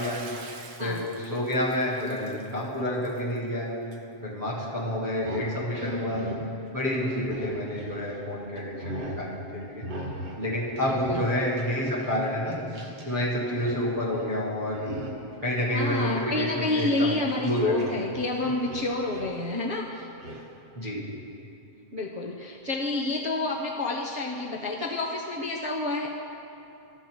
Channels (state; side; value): late; left; 7.5 ms